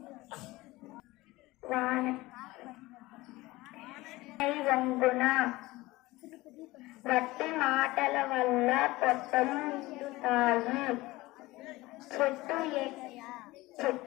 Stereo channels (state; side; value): quieter; right; 19.8 dB